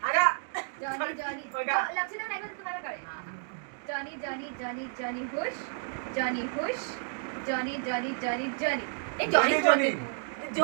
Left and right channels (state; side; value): silent; left; digital silence